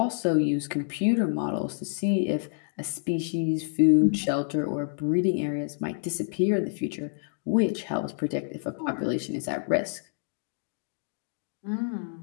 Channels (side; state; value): right; silent; digital silence